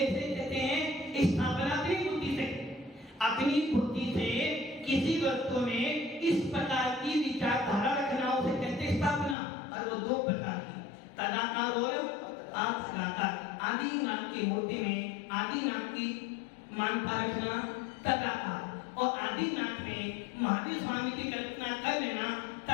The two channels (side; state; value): right; drops out; at 9.3 s